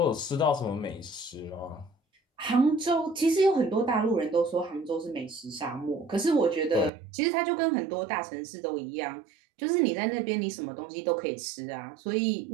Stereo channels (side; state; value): left; drops out; at 6.9 s